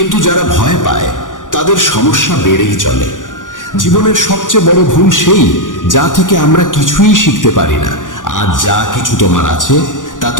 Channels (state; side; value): late; right; 0.88 ms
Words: যারা ভয় পায় তাদের সমস্যা বেড়েই চলে। জীবনের সবচেয়ে বড় ভুল সেই যা থেকে আমরা কিছুই শিখতে পারি না। আজ যা কিছু তোমার আছে তা